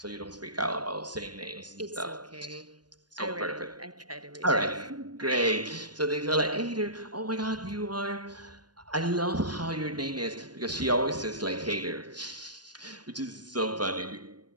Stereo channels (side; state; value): left; late; 0.70 ms